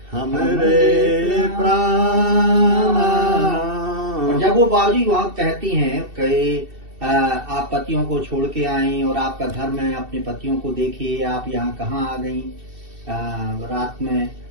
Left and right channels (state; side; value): late; left; 2.7 ms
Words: हमरे प्राण। जब वो बाबूजी वहाँ कहती हैं कि आप पतियों को छोड़ के आए और आपका धर्म है, अपने पतियों को देखिए, आप यहाँ कहाँ आ गई रात में।